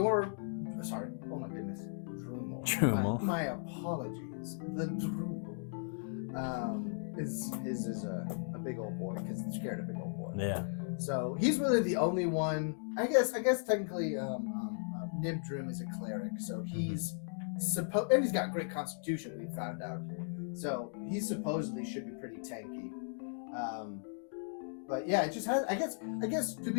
Sorry, oh my goodness, Drumel. My apologies. The Drumel is a big old boy, because it's carrying a big old boy. Yeah. So he's really the only one. I guess technically, Nibdroom is a cleric, so he's and he's got great constitution. We found out, so he supposedly should be pretty tanky. But yeah, it just has. I guess to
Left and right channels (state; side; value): silent; right; digital silence